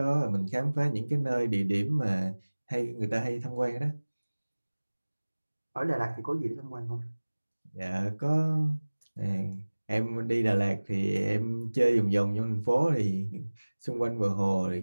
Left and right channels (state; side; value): inverted; both; correlation -1.00